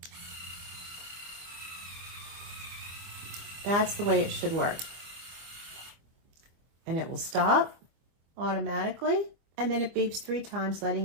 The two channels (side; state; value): left; late; 25 ms